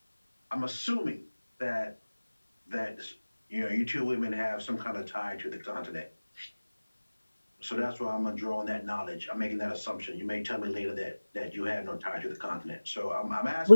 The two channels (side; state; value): both; inverted; correlation -1.00